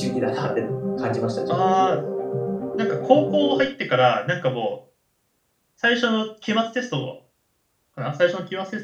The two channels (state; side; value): identical; both; correlation 1.00